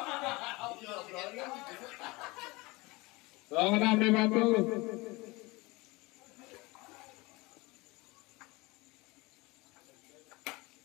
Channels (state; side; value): quieter; right; 23.5 dB